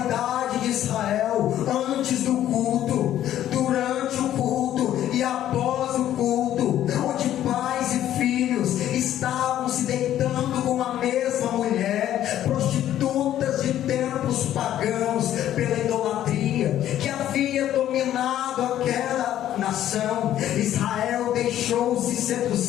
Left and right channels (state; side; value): quieter; right; 11.9 dB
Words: de Israel antes do culto, durante o culto e após o culto, onde pais e filhos estavam se deitando com a mesma mulher, prostitutas de tempos pagãos, pela idolatria que havia dominado aquela nação. Israel deixou-se